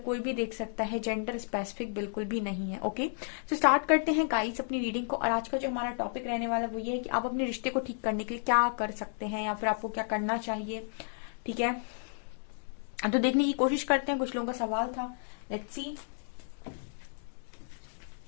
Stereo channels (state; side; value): silent; right; digital silence